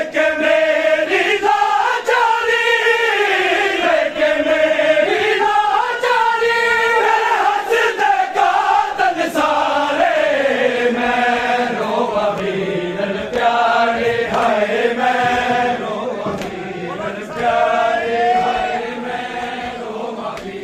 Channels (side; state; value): both; identical; correlation 1.00